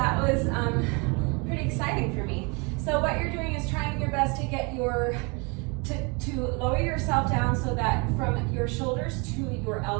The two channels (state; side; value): quieter; left; 30.7 dB